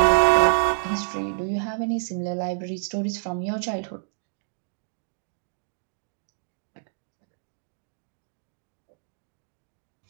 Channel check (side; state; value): left; silent; digital silence